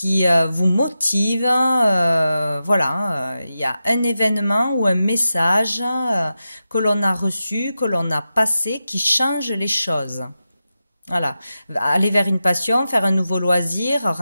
motive. Voilà, il y a un événement ou un message que l'on a reçu, que l'on a passé, qui change les choses. Voilà, aller vers une passion, faire un nouveau loisir,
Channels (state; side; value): inverted; both; correlation -0.91